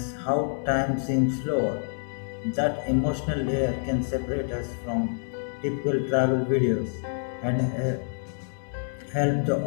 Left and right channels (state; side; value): silent; right; 59 dB below the other